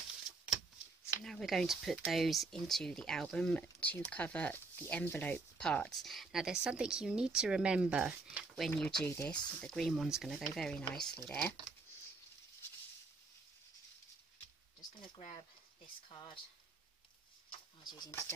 So now we're going to put those into the album to cover the envelope parts. Now there's something you need to remember when you do this. The green one's going to go very nicely there. Just going to grab this card I was using to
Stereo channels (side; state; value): left; quieter; 3.7 dB